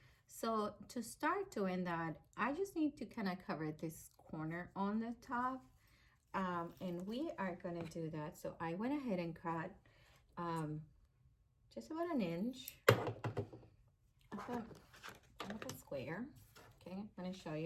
So to start doing that, I just need to kind of cover this corner on the top. And we are gonna do that. So I went ahead and cut just about an inch of a square. Okay, I'm gonna show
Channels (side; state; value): both; identical; correlation 1.00